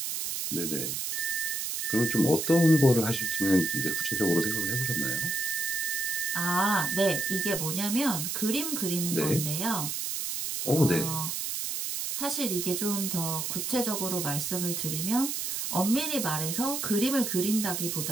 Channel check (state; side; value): noise; right; hiss, 2 dB below the sound